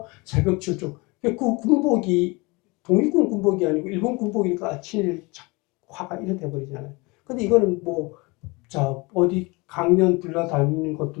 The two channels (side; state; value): right; quieter; 26.0 dB